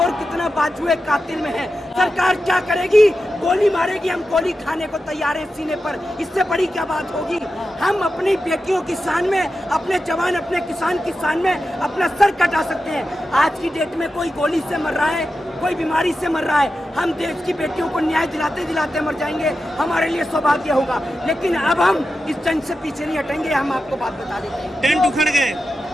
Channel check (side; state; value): both; normal; correlation 0.91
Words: कितना बाजुए कातिल में है। सरकार क्या करेगी? गोली मारेगी, हम गोली खाने को तैयार है सीने पर, इससे बड़ी क्या बात होगी? हम अपनी बेटियों की शान में, अपने जवान, अपने किसान की शान में अपना सर कटा सकते हैं। आज की डेट में कोई गोली से मर रहा है, कोई बीमारी से मर रहा है, हम देश की बेटियों को न्याय दिलाते दिलाते मर जाएंगे, हमारे लिए सौभाग्य होगा। लेकिन अब हम इस जंग से पीछे नहीं हटेंगे। हम आपको बात बता देते हैं, टेंट उखड़ गए,